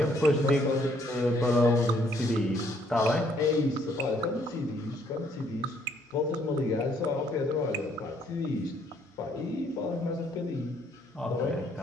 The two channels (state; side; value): normal; both; correlation 0.66